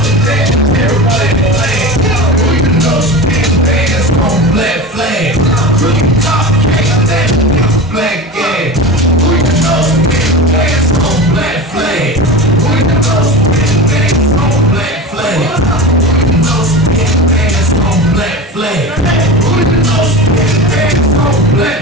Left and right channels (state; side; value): normal; both; correlation 0.29